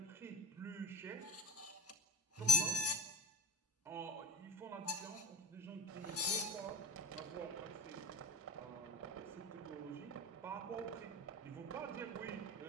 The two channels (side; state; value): both; normal; correlation 0.32